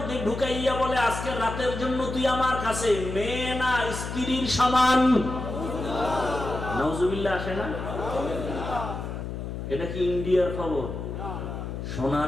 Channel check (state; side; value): noise; left; hum, 6 dB below the sound